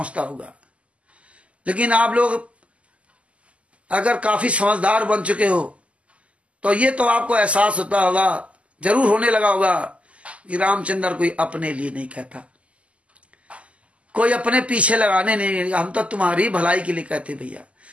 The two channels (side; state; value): left; late; 0.061 ms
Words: होगा। लेकिन आप लोग अगर काफी समझदार बन चुके हो तो ये तो आपको एहसास होता होगा, जरूर होने लगा होगा कि रामचंद्र कोई अपने लिए नहीं कहता, कोई अपने पीछे लगाने नहीं, हम तो तुम्हारी भलाई के लिए कहते भैया,